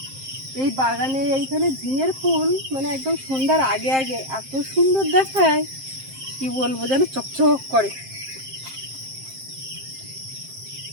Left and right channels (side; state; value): left; late; 7.6 ms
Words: এই বাগানে এইখানে ঝিঙের ফুল মানে একদম সন্ধ্যার আগে আগে এত সুন্দর দেখায়, কি বলবো, যেন চকচক করে।